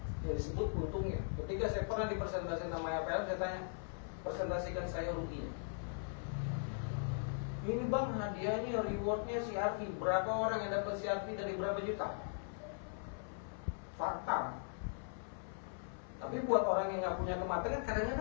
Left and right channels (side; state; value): right; silent; 51 dB below the other